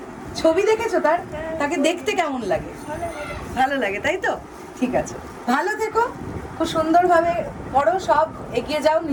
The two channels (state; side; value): identical; both; correlation 1.00